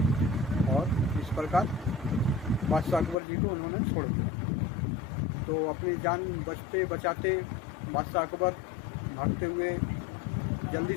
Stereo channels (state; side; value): drops out; right; at 3.2 s